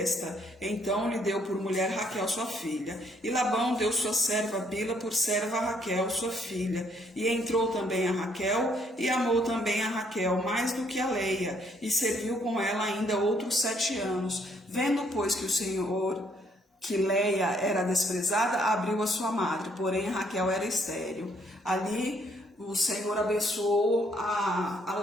então lhe deu por mulher Raquel, sua filha. E Labão deu sua serva Bila por serva a Raquel, sua filha. E entrou também a Raquel, e amou também a Raquel mais do que a Leia, e serviu com ela ainda outros 7 anos. Vendo, pois, que o Senhor, que Leia era desprezada, abriu a sua madre, porém Raquel era estéril. Ali o Senhor abençoou a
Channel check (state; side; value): normal; both; correlation 0.68